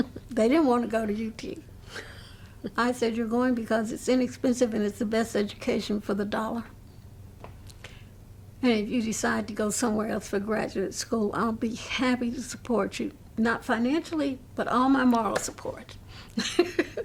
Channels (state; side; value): identical; both; correlation 1.00